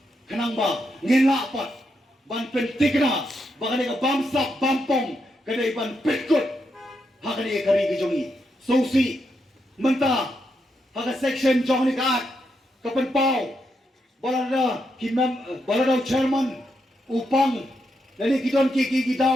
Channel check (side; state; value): both; normal; correlation 0.81